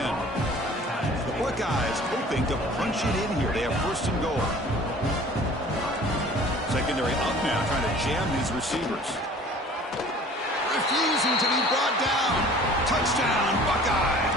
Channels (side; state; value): both; normal; correlation 0.48